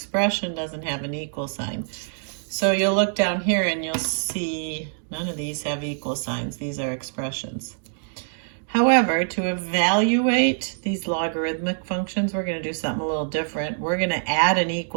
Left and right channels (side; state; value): left; silent; digital silence